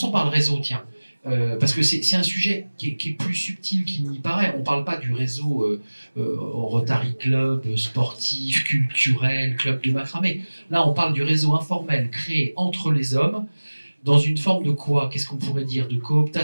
par le réseau, tiens. Parce que c'est un sujet qui est plus subtil qu'il n'y paraît. On ne parle pas du réseau Rotary Club, sportif, culturel, club de macramé. Là, on parle du réseau informel créé entre les hommes dans une forme de quoi? Qu'est-ce qu'on pourrait dire? De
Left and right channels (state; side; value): inverted; both; correlation -1.00